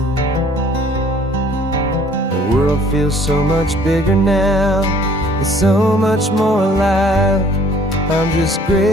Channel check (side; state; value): both; normal; correlation 0.56